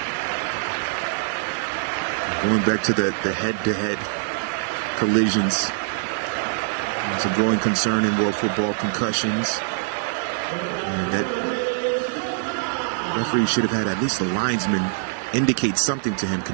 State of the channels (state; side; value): silent; left; digital silence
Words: Going back to the head-to-head collisions. It's a growing concern in world football, concussions. And that referee should have had at least the linesman indicate something to him,